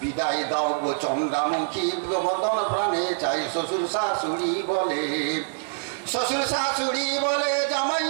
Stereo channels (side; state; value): left; silent; digital silence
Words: দাও গো চন্দ্রামুখী, বদন প্রাণে চাই। শ্বশুর শাশুড়ি বলে, শ্বশুর শাশুড়ি বলে জামাই